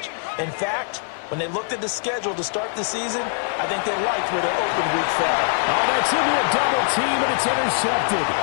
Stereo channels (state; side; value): silent; right; digital silence